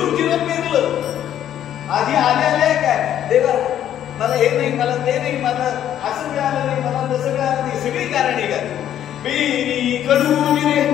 जिरं पेरलं, आधी आले काय, देवा मला हे नाही, मला ते नाही, मला असं मिळालं नाही, मला तसं मिळालं नाही, सगळी कारणे काय. पेरी कडू जिरे,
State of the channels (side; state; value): right; quieter; 10.8 dB